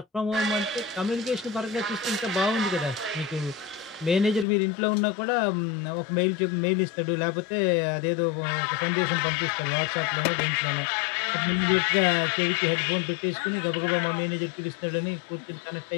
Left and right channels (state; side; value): drops out; right; at 4.5 s